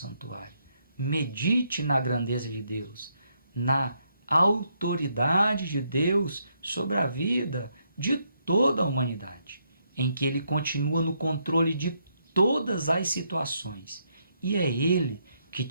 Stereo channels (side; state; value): both; inverted; correlation -0.76